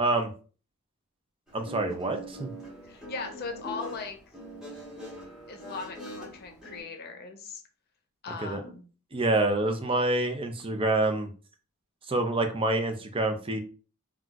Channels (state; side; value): normal; both; correlation 0.26